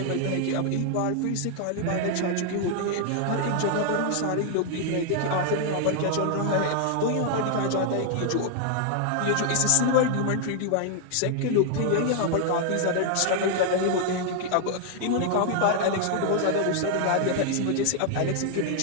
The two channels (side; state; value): both; different; correlation 0.00